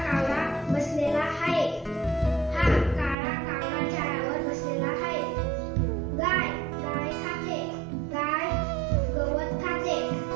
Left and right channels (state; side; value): drops out; left; at 3.2 s